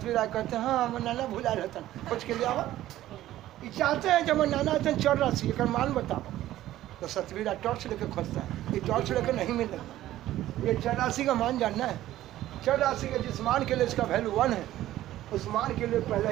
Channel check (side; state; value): left; quieter; 14.2 dB